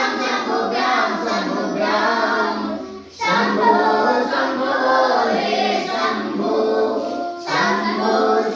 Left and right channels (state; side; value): identical; both; correlation 1.00